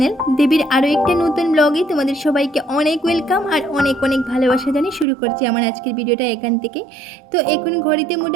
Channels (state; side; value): drops out; left; at 5.1 s